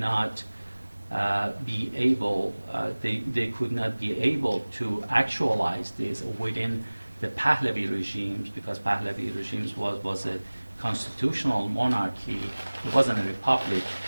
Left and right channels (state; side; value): inverted; both; correlation -1.00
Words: be able, they could not be able to actualize this within the Pahlavi regimes, because Pahlavi regimes was a constitutional monarchy. It wasn't a republic.